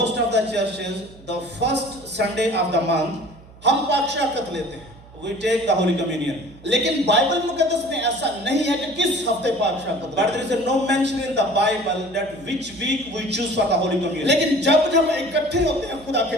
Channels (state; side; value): noise; right; hum, 22 dB below the sound